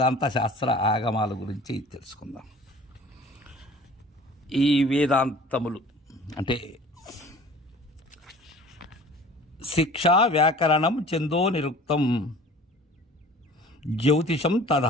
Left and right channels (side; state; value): both; normal; correlation 0.46